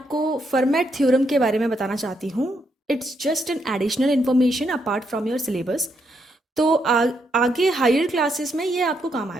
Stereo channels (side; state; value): both; normal; correlation 0.78